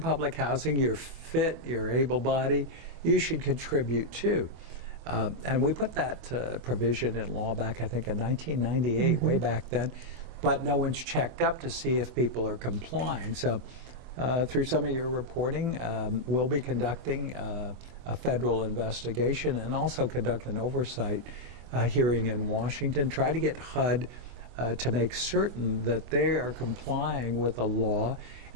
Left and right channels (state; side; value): late; left; 24 ms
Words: housing, you're fit, you're able-bodied, you should contribute too. And we put that provision in law back, I think, in 1998, way back then. But no one's checked up to see if people are complying. So through some of your reporting, we'll be conducting a federal investigation and also conduct an oversight hearing in Washington, try to get HUD to make certain that they are complying with the law